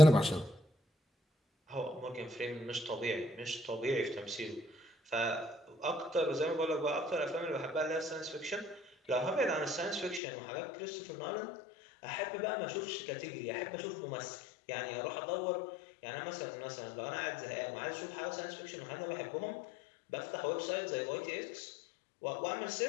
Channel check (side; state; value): right; drops out; at 10.2 s